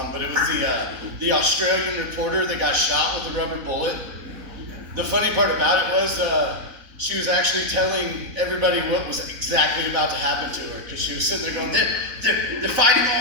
but it was the Australian reporter that got shot with a rubber bullet. The funny part about it was she was actually telling everybody what was exactly about to happen to her, because she was sitting there going, they're fighting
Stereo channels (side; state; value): left; late; 4.0 ms